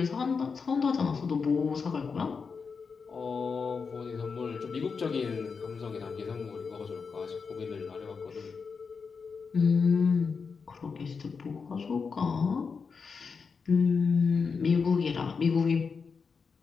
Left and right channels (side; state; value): right; quieter; 5.3 dB